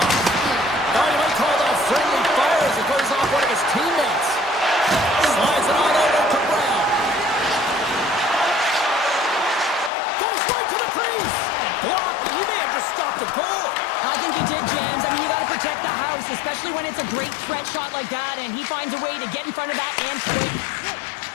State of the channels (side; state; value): right; drops out; at 9.9 s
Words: Now he might call that friendly fire as it goes off one of his teammates. Slides it on over to Brown. Goes right to the crease. Blocked. He may have just stopped the goal. I think he did, James. I mean, you got to protect the house, especially when it's a great threat shot like that, and he finds a way to get in front of that and quick.